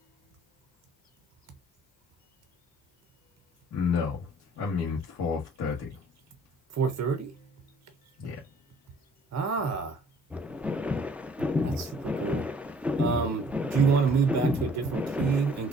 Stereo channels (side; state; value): both; normal; correlation 0.57